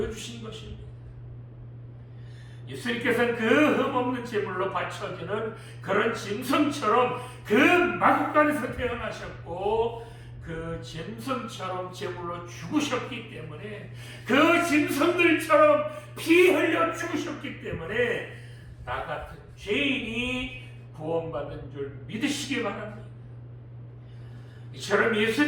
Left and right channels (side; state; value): both; identical; correlation 1.00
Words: 것입니다. 예수님께서는 그 흠없는 제물로 바쳐지는 그런 짐승처럼 그 마구간에서 태어나셨고 그 짐승처럼 제물로 죽으셨기 때문에, 그 짐승들처럼 피 흘려 죽으셨기 때문에 나 같은 죄인이 구원받은 줄 믿으시기 바랍니다. 이처럼